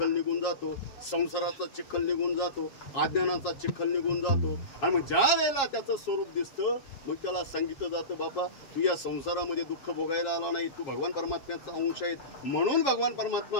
निघून जातो, संसाराचा चिखल निघून जातो, अज्ञानाचा चिखल निघून जातो आणि मग ज्या वेळेला त्याचं स्वरूप दिसतं, मग त्याला सांगितलं जातं, बापा तू या संसारामध्ये दुःख भोगायला आला नाही, तू भगवान परमात्म्याचा अंश आहे. म्हणून भगवान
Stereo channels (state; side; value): late; right; 7.3 ms